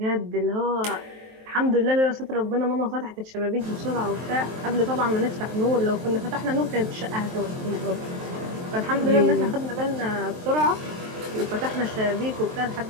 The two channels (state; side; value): late; left; 23 ms